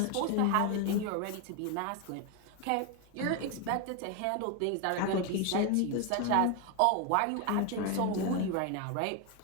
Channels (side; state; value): both; different; correlation 0.01